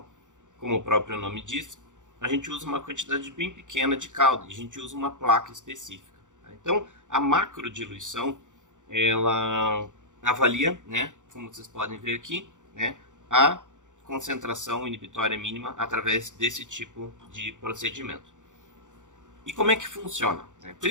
como o próprio nome diz, a gente usa uma quantidade bem pequena de caldo, e a gente usa uma placa específica. Então, a macrodiluição, ela avalia, né, como vocês podem ver aqui, né, a concentração inibitória mínima através desse tipo de procedimento. E como é que funciona?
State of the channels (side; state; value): left; late; 0.86 ms